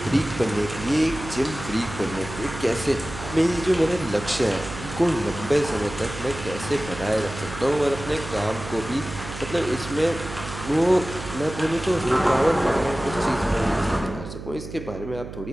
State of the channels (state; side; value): noise; right; hum, 11 dB below the sound